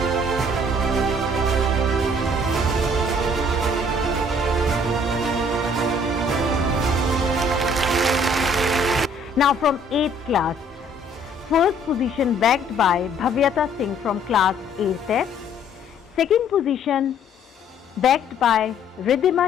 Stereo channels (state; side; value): normal; both; correlation 0.59